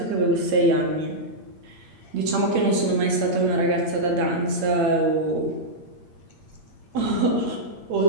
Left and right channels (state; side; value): late; left; 8.6 ms